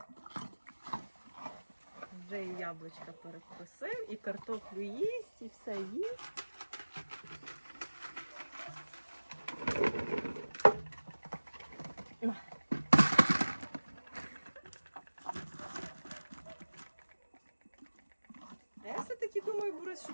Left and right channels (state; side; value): inverted; both; correlation -1.00